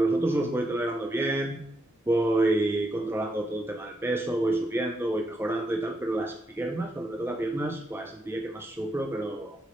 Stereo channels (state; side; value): normal; both; correlation 0.81